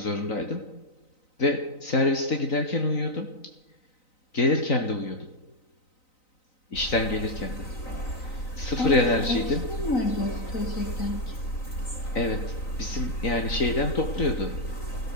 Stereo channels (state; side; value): late; right; 3.9 ms